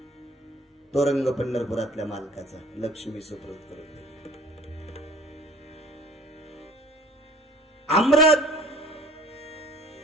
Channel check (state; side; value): normal; both; correlation 0.49